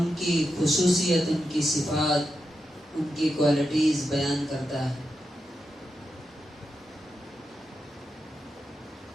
کی خصوصیت، ان کی صفات، ان کی کوالٹیز بیان کرتا ہے۔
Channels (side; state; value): both; normal; correlation 0.87